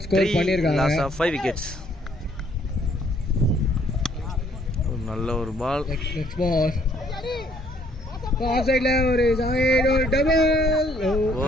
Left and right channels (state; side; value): normal; both; correlation 0.65